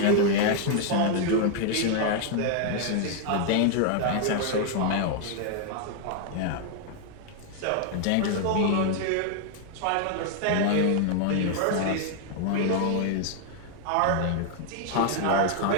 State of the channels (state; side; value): different; both; correlation 0.00